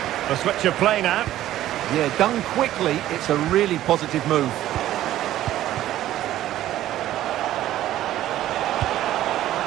The switch of play now. Yeah, done quickly, it's a really positive move.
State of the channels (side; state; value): left; quieter; 13.5 dB